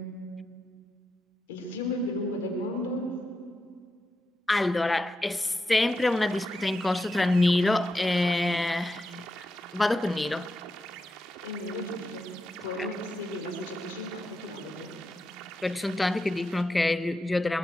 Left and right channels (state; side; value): normal; both; correlation 0.87